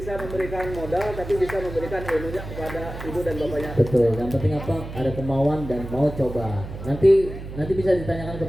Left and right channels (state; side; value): noise; right; hum, 10 dB below the sound